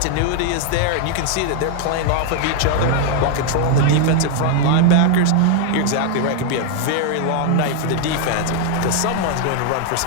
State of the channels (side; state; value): both; different; correlation 0.00